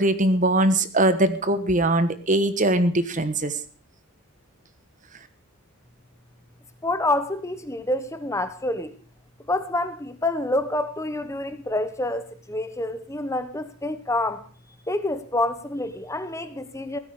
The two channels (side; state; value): both; normal; correlation 0.44